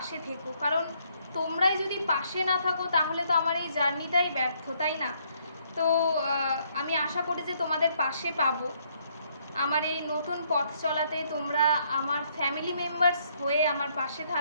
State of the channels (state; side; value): inverted; both; correlation -0.69